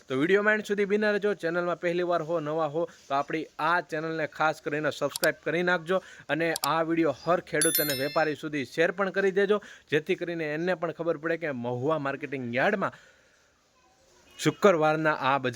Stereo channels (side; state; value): both; identical; correlation 1.00